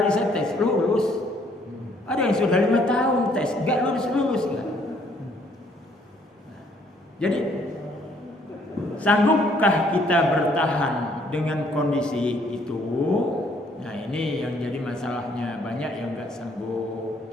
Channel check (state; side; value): normal; both; correlation 0.65